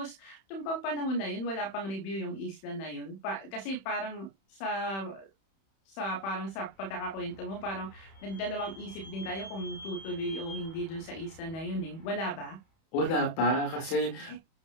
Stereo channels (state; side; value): late; right; 31 ms